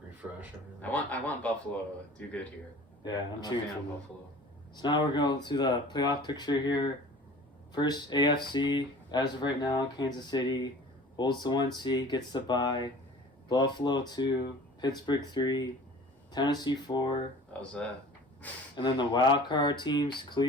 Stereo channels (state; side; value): normal; both; correlation 0.44